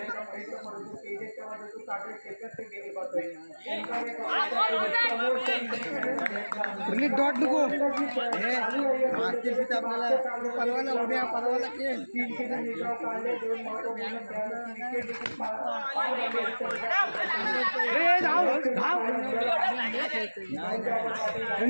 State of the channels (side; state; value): both; inverted; correlation -1.00